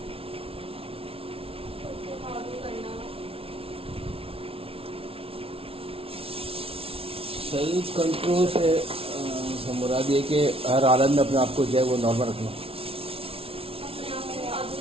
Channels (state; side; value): late; left; 0.27 ms